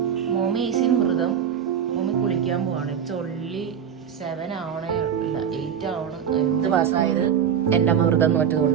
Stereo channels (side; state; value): left; quieter; 8.3 dB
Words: Mommy ഈസിൻ വ്രതം. മോമി കുളിക്കാൻ പോവാണ്. ഇറ്റ്സ് ഓൺലി 7 ആവണേ, ഇല്ല 8 ആവണം. എന്ത് പാസ്സായത് എൻ്റെ അമ്മ വ്രതം